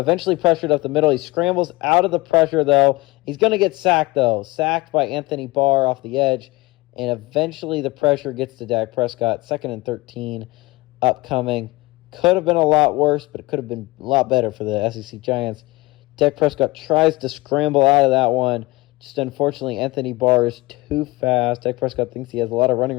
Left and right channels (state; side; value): quieter; right; 21.8 dB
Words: pressured up the middle. He scrambles out of the pressure, though. He's going to get sacked, though. Sacked by Anthony Barr off the edge. And eventually the pressure gets to Dak Prescott. 2nd and 13 upcoming. Could have been a lot worse, but it could have been a lot better for the SEC Giants. Dak Prescott tries to scramble out of that one. Just unfortunately, Anthony Barr is too fast. Dak Prescott thinks he has a lot of running